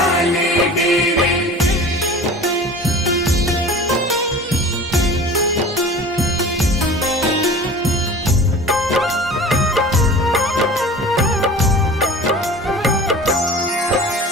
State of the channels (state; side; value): normal; both; correlation 0.39